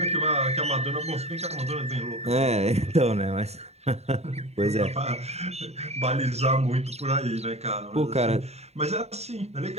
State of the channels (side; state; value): left; late; 0.31 ms